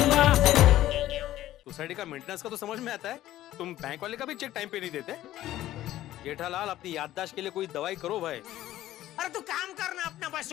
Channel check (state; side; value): quieter; right; 14.1 dB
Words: सोसाइटी का मेंटेनेंस का तो समझ में आता है, तुम बैंक वाले का भी चेक टाइम पे नहीं देते। जेठालाल अपनी याददाश्त के लिए कोई दवाई करो भाई। अरे तू काम करना अपना भाई,